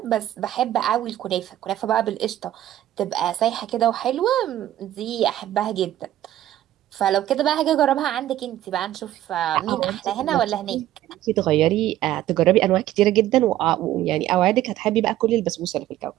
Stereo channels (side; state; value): left; quieter; 13.2 dB